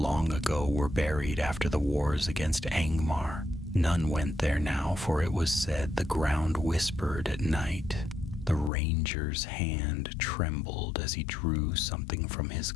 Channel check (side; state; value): right; drops out; at 8.7 s